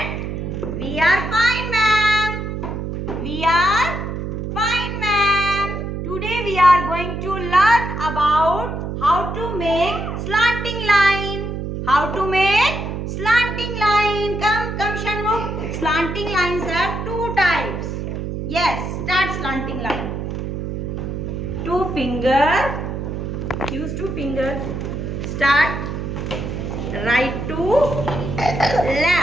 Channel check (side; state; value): right; noise; hum, 4 dB below the sound